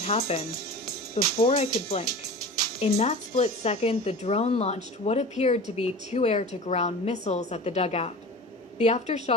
happened. Before I could blink. In that split second, the drone launched what appeared to be 2 air-to-ground missiles at the dugout. The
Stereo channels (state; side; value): normal; both; correlation 0.34